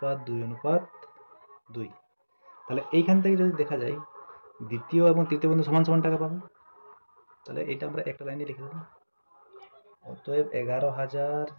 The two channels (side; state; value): both; inverted; correlation -1.00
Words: তাহলে এইখান থেকে যদি দেখা যায় দ্বিতীয় এবং তৃতীয় বন্ধু সমান সমান টাকা পাবে, তাহলে এটা আমরা একটা লাইনে লিখে দেবো। অতএব